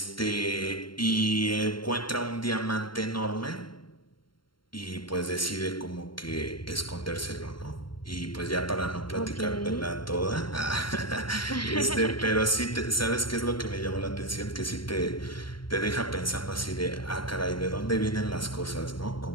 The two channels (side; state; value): right; late; 0.73 ms